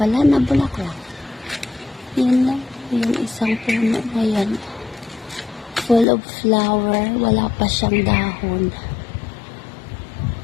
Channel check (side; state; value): right; drops out; at 6.1 s